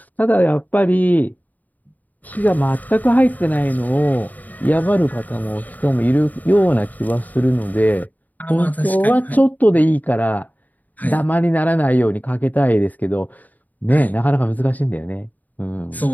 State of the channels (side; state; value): right; late; 0.080 ms